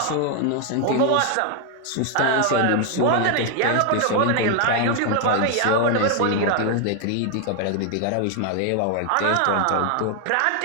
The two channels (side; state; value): both; different; correlation 0.01